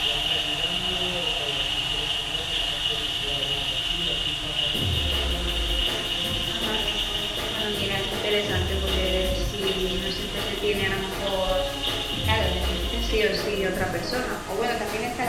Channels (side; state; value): both; identical; correlation 1.00